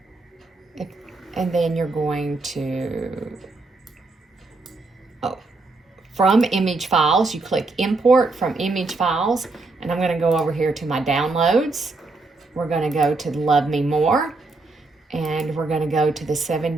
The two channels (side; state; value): left; quieter; 3.5 dB